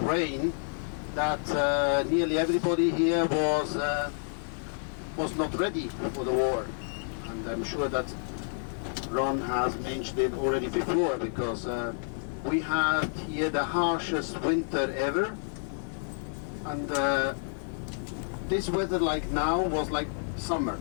that nearly everybody here was not ready for the war, and I'm sure that Ron has mentioned it already before, because we had here the harshest winter ever, and this weather like now was like summer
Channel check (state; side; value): silent; right; digital silence